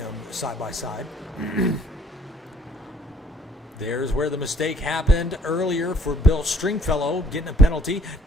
side by side. There's where the mistake happened earlier for Bill Stringfellow, getting a penalty.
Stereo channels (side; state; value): both; normal; correlation 0.64